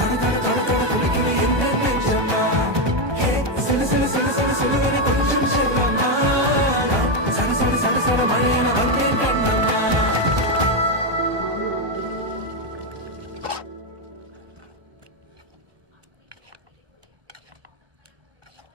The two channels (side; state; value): left; late; 1.2 ms